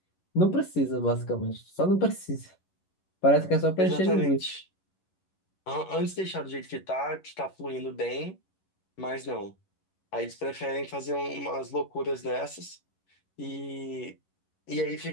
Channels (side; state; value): right; late; 11 ms